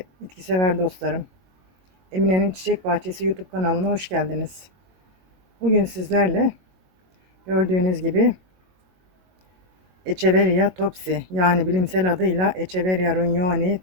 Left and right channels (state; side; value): late; left; 22 ms